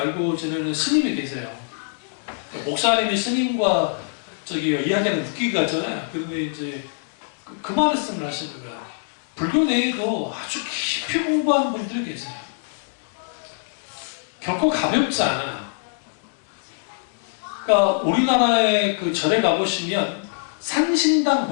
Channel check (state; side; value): silent; right; digital silence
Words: 지내는 스님이 계세요. 목사님이 스님과 이야기하는 웃기가 같잖아요. 그런데 이제 그 말씀을 하시는 거예요. 불교 내에도 아주 깊이 공부하는 분들이 계세요. 결코 가볍지 않아요. 그러니까 우리나라의 그 절에 가보시면 산신당